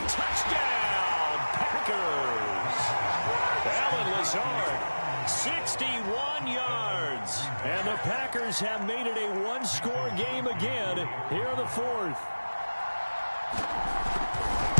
Touchdown, Packers. Alan Lazard, 61 yards. And the Packers have made it a 1-score game again here in the 4th.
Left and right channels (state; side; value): inverted; both; correlation -1.00